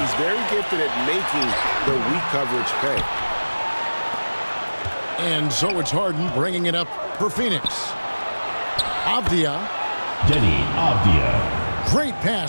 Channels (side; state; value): both; inverted; correlation -1.00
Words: very gifted at making the weak coverage pay. And so it's Harden bringing it up for Phoenix. Avdia. Denny Avdia. Great